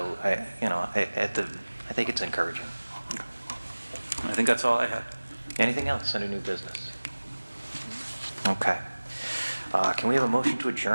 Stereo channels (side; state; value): both; inverted; correlation -1.00